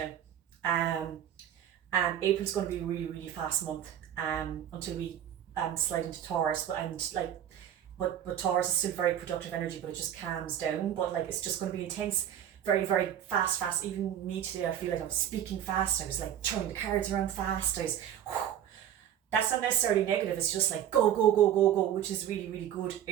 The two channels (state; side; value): quieter; left; 10.3 dB